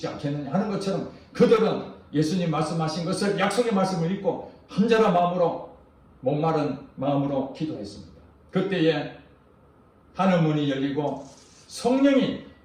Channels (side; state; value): both; identical; correlation 1.00